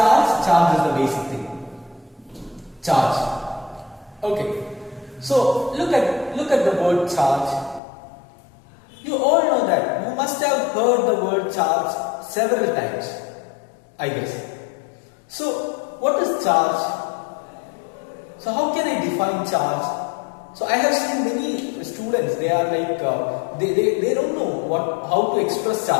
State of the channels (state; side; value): drops out; right; at 7.8 s